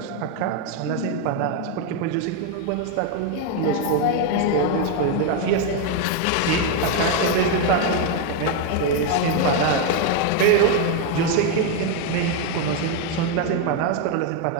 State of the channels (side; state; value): both; different; correlation 0.01